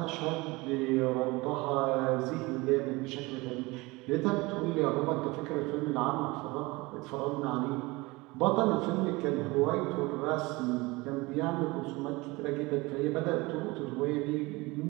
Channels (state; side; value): quieter; left; 23.1 dB